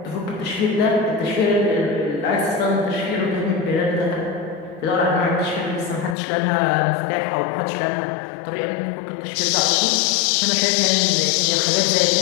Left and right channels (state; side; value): drops out; right; at 6.2 s